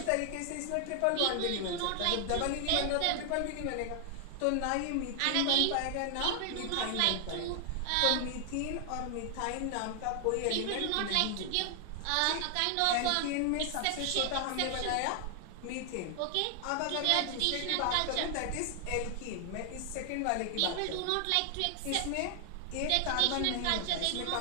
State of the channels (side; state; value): both; different; correlation 0.00